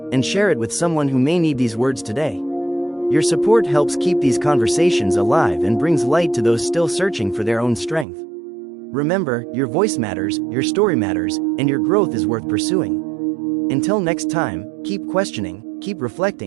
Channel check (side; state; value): left; drops out; at 8.1 s